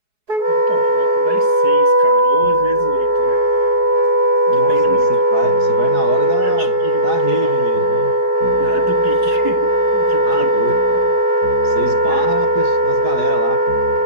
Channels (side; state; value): left; late; 4.7 ms